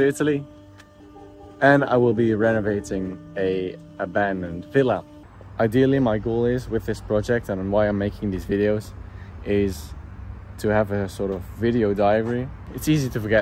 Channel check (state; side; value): identical; both; correlation 1.00